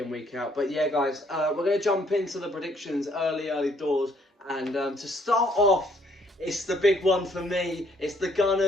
week out. But yeah, guys, we're going to jump into the predictions early doors. And to start off, it's the big one for me. It's the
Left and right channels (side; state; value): both; normal; correlation 0.66